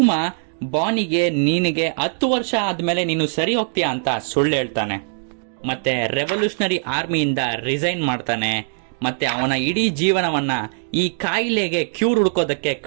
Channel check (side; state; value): left; silent; digital silence